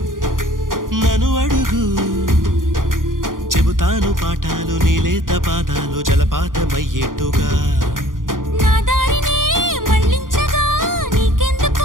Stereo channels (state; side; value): late; left; 0.90 ms